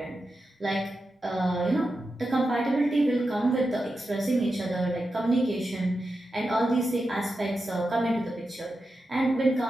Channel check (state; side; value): normal; both; correlation 0.90